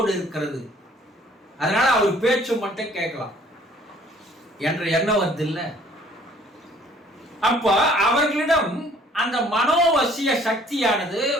இருக்கிறது. அதனால அவர் பேச்சு மட்டும் கேட்கலாம் என்ற எண்ணம் வருது இல்ல. அப்ப அவர்களிடம் அந்த மனோவசிய சக்தியானது,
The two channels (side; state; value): both; normal; correlation 0.57